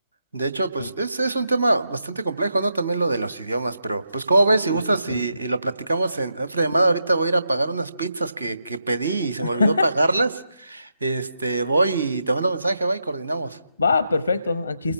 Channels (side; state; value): both; inverted; correlation -0.83